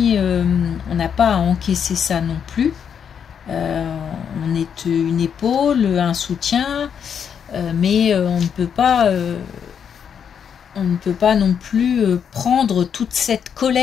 on n'a pas à encaisser ça non plus. On est une épaule, un soutien, mais on ne peut pas non plus prendre toute cette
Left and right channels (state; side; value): quieter; right; 7.6 dB